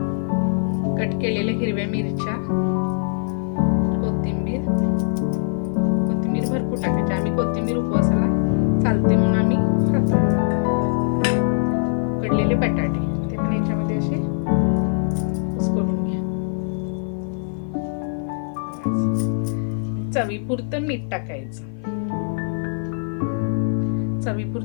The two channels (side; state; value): right; silent; 55 dB below the other